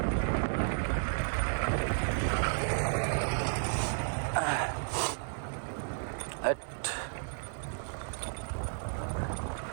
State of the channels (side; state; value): left; silent; digital silence